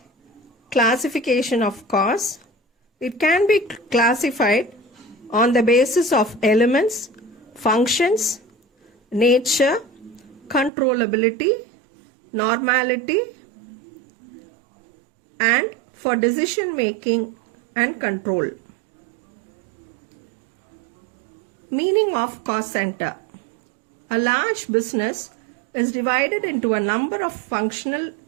Classification of costs. It can be classified on the basis of elements, functions, nature, controllability, normality, and for decision making and control. Meaning of cost center. A large business is divided into a number of functional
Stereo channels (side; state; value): left; drops out; at 10.7 s